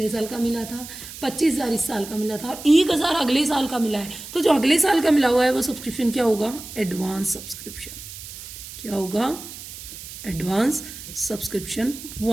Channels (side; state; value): right; noise; hiss, 13 dB below the sound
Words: साल का मिला था 25,000, इस साल का मिला था और 1,000 अगले साल का मिला है। तो जो अगले साल का मिला हुआ है वो सब्सक्रिप्शन क्या होगा, एडवांस सब्सक्रिप्शन। क्या होगा, एडवांस सब्सक्रिप्शन